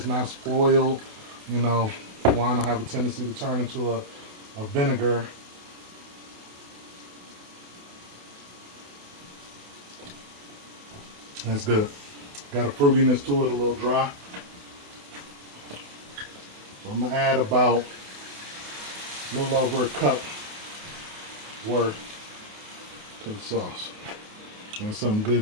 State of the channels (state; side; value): late; left; 28 ms